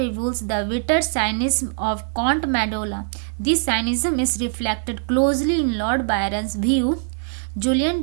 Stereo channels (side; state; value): left; silent; 64 dB below the other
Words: the bitter cynicism of Count Mandola. This cynicism is reflected closely in Lord Byron's view. Julian